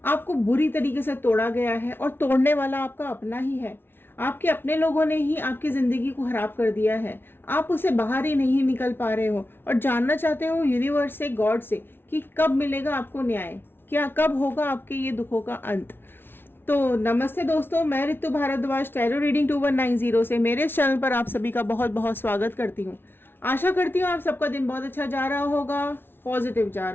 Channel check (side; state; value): right; late; 0.11 ms